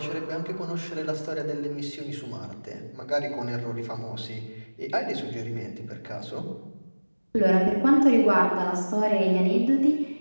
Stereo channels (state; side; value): inverted; both; correlation -1.00